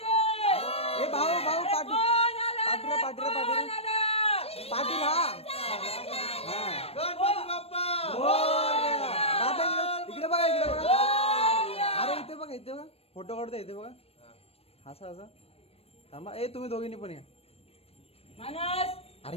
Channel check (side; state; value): right; late; 0.29 ms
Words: ए भाऊ भाऊ पाटील कोण आलं रे? पाटील पाटील कोण पाटील आलं? पाटील हा. गणपती बाप्पा मोरया. दादा इकडे बघा इकडे बघा. अरे इथे बघा इथे बघा. फोटो काढतो इथे बघा. असा असा थांबा. ए तुम्ही दोघींनी पण या. मानस अरे